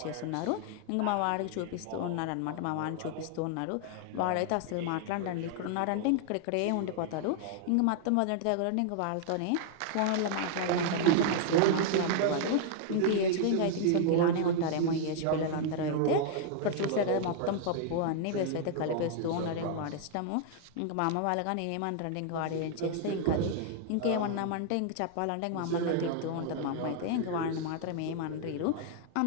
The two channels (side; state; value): both; different; correlation 0.00